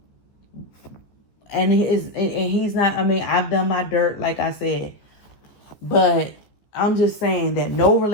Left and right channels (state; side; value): late; right; 14 ms